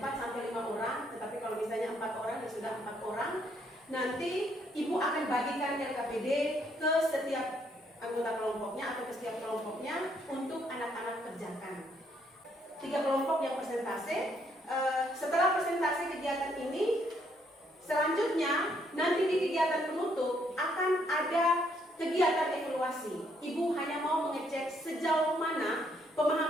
sampai 5 orang, tetapi kalau misalnya 4 orang ya sudah 4 orang. Nanti Ibu akan bagikan LKPD ke setiap anggota kelompoknya atau ke setiap kelompoknya untuk anak-anak kerjakan. 3 kelompok yang presentase. Setelah presentasi kegiatan ini, selanjutnya nanti di kegiatan penutup akan ada kegiatan evaluasi. Ibu hanya mau mengecek sejauh mana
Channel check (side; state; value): both; normal; correlation 0.71